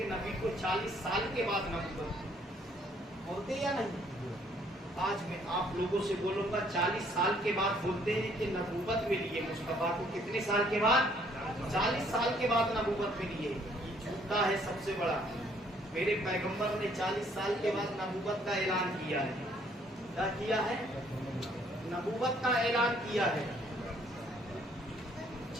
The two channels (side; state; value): both; normal; correlation 0.64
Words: نبی کو 40 سال کے بعد نبوت بولتے یا نہیں؟ آج میں آپ لوگوں سے بولوں گا 40 سال کے بعد بولتے ہیں کہ نبوت ملی ہے مصطفیٰ کو، کتنے سال کے بعد؟ 40 سال کے بعد نبوت ملی ہے، یہ جھوٹا ہے سب سے بڑا، میرے پیغمبر نے 40 سال کے بعد نبوت کا اعلان کیا ہے، کیا کیا ہے؟ نبوت کا اعلان کیا ہے،